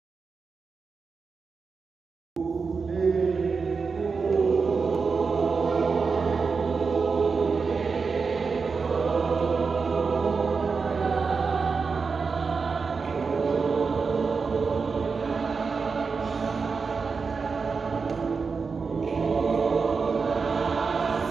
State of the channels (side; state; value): left; quieter; 5.0 dB